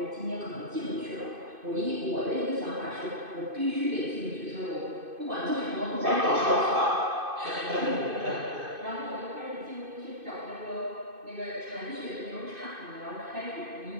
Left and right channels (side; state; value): left; late; 2.5 ms